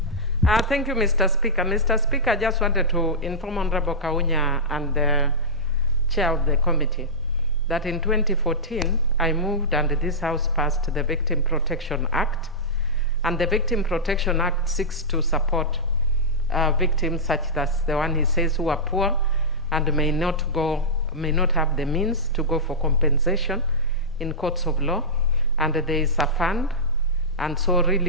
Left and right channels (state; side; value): normal; both; correlation -0.13